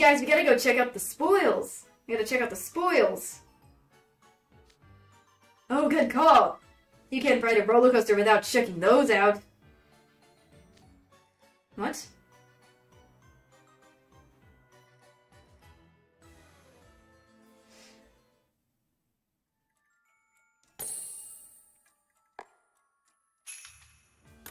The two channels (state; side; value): identical; both; correlation 1.00